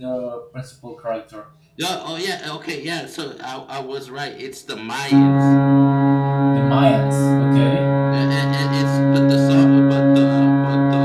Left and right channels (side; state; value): both; identical; correlation 1.00